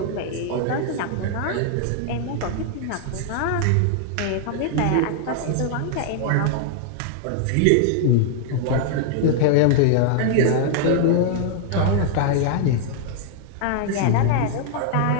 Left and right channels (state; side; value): different; both; correlation 0.00